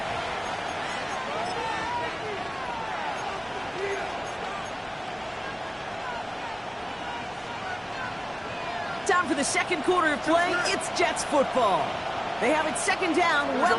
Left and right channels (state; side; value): identical; both; correlation 1.00